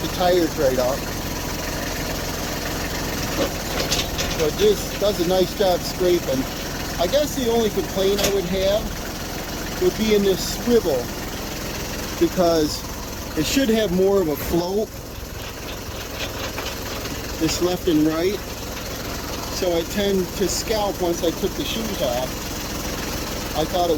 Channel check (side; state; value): both; identical; correlation 1.00